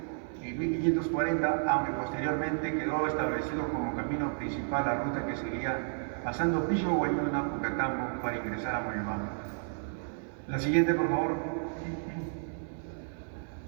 y 1540, aunque posteriormente quedó establecido como camino principal la ruta que seguía pasando Pisco Guayuna, Pucatambo, para ingresar a Moyobamba. La siguiente, por favor.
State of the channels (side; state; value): left; silent; 56 dB below the other